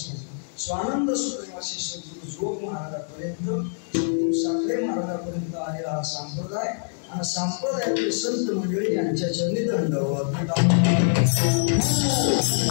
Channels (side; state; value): right; silent; digital silence